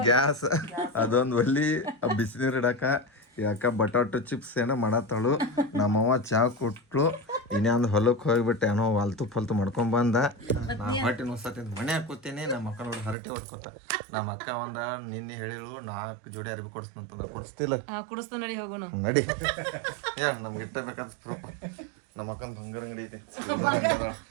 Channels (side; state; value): left; drops out; at 13.2 s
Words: ಗ್ಯಾಸ್ ಅದೊಂದು ಒಲಿ ಬಿಸಿನೀರು ಇಡಾಕ ಯಾಕ ಬಟಾಟೊ ಚಿಪ್ಸ್ ಏನೋ ಮಾಡತ್ತಾಳು ನಮ್ಮವ್ವ ಚಾ ಕೊಟ್ಲು ಇನ್ನೊಂದು ಹೊಲಕ್ಕೆ ಹೋಗ್ಬಿಟ್ಟು ಏನೋ ಹೊಲ್ತು ಮಾಡ್ಕೊಂಡ್ ಬಂದ ನಾ ಹೊಟ್ಟೆ ನುಸ್ಸತ್ತಿದ್ ಮನೆ ಹಾಕೋತೀನಿ ನಮ್ಮ ಅಕ್ಕ ನೋಡಿ ಹರಟಿ ಹೊಡ್ಕೊತ ನಮ್ಮ ಅಕ್ಕ ನಿನ್ನೆ ಹೇಳಿಳು 4 ಜೋಡಿ ಅರಿವಿ ಕೊಡಿಸ್ತಂತಂದ ಕೊಡಿಸ್ತಿಲ್ಲ ನಡಿ ಹೇಳ ನಮ್ಗೆ ಇಟ್ಟಬೇಕಾದ ಪ್ರೂಫ್ ನಮ್ಮ ಅಕ್ಕನ ಬಂಗಾರ ಅಂಗಡಿ ಐತಿ